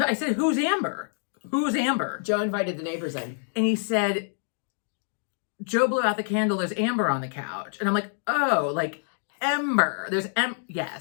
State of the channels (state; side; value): silent; right; digital silence